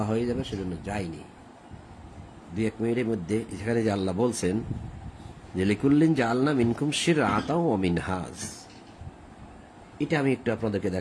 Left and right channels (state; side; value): identical; both; correlation 1.00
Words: হয়ে যাবে সেজন্য যাইনি। 2-1 মিনিটের মধ্যে যেখানে যে আল্লাহ বলছেন যে লিকুল্লিন জাআলনা মিনকুম শিরআতাও ওয়া মিনহাজ, এটা আমি একটু আপনাদেরকে